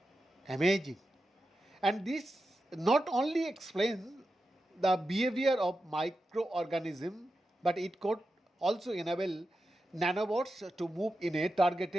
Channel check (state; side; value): normal; both; correlation 0.90